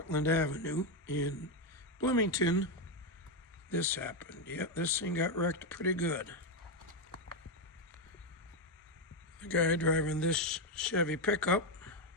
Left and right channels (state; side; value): normal; both; correlation 0.05